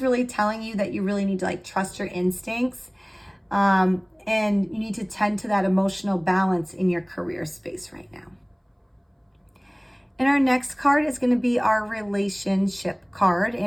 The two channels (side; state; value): both; identical; correlation 1.00